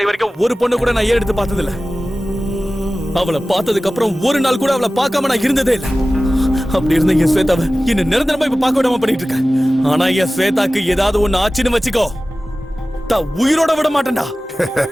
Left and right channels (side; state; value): both; normal; correlation 0.96